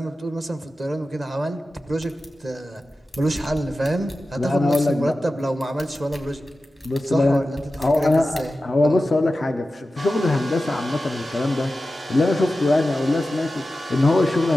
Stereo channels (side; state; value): both; normal; correlation 0.94